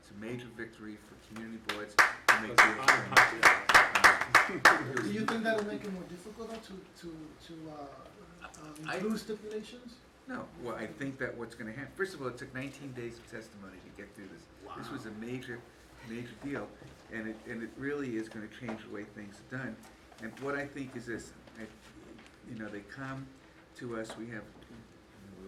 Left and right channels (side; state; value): both; identical; correlation 1.00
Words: a major victory for community boards to make real change. Do you think that'll make it more difficult though to include stipulations? No, well, I think that what's gonna happen, first of all, it took 19 days of testimony to get through this. This was a major deal, and it really is gonna change the way things are done. And what I think is this, you know, they come to us, we have,